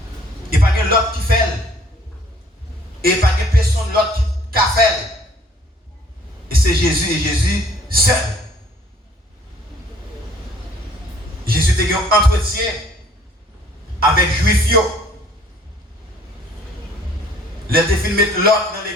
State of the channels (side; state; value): both; normal; correlation 0.57